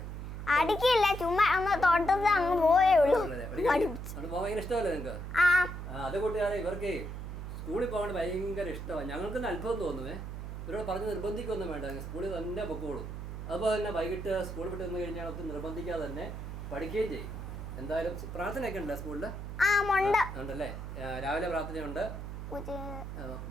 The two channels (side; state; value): right; noise; hum, 7 dB below the sound